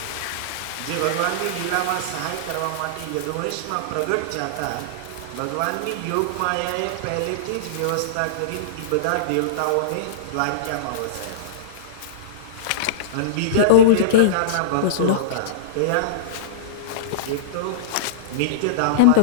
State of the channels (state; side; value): different; both; correlation -0.03